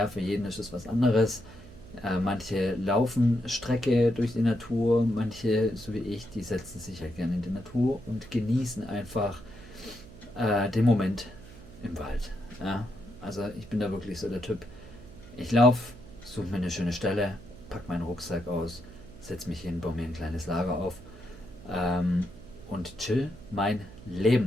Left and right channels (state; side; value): noise; right; hum, 18 dB below the sound